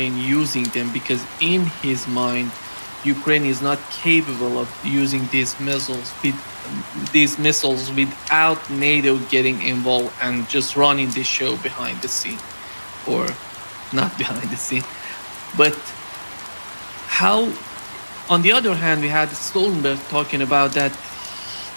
using them because in his mind, Ukraine is not capable of using these missiles without NATO getting involved and just running the show behind the scene, or not behind the scene. But how? On the other hand, we had Stoltenberg talking about that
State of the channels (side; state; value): both; inverted; correlation -1.00